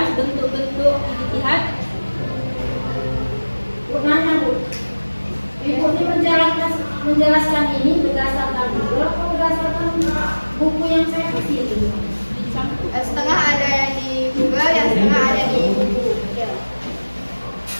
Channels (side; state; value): both; inverted; correlation -1.00